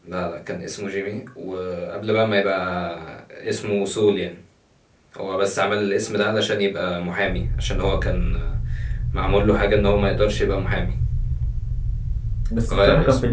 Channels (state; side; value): identical; both; correlation 1.00